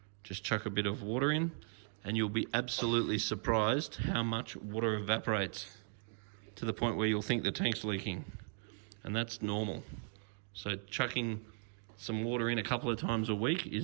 just chuck a bit of water in, and you'll be absolutely surprised how much water evaporates, to the point where you'll think the tank's leaking, and that's normal. So chucking some water in a couple of times a week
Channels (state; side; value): silent; left; 53 dB below the other